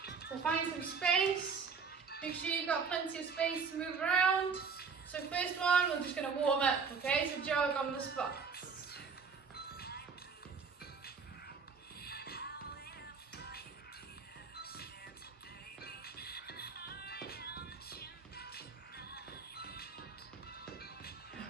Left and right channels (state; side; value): quieter; left; 5.5 dB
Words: So find some space, make sure you've got plenty of space to move around. So first one, we're just going to warm up, okay, so jog on the spot.